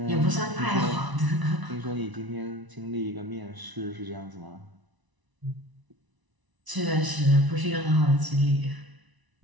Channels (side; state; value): left; late; 1.0 ms